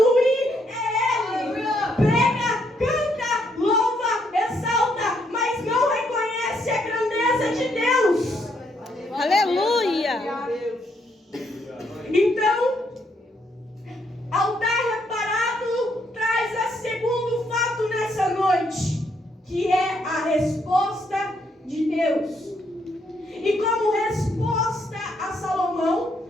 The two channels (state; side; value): normal; both; correlation 0.74